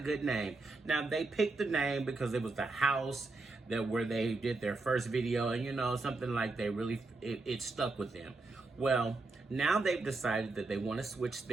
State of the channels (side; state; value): left; quieter; 3.4 dB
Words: name. Now, they picked the name because it was the house where they did their first video, and something like it stuck with them. Well, now they've decided that they want to switch